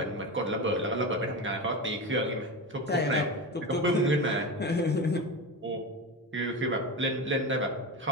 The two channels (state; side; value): normal; both; correlation 0.22